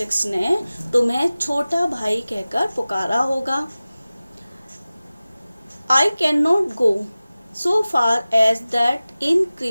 ने तुम्हें छोटा भाई कहकर पुकारा होगा। I can not go so far as that in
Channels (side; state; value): both; inverted; correlation -0.97